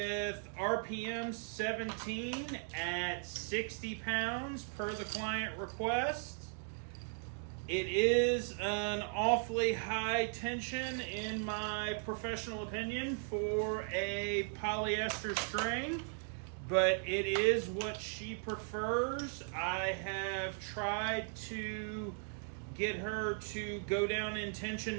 RPM 17 at 60 pounds per the client request. It is an awfully high tension, in my professional opinion, for a polyester string, but it is what she prefers. I have tried to get her to go down in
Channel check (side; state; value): left; silent; 53 dB below the other